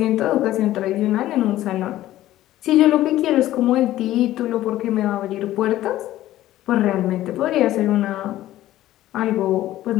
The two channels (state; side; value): quieter; right; 14.5 dB